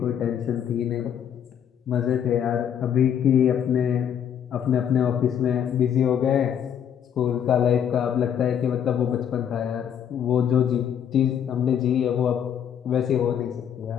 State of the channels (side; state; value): right; quieter; 8.8 dB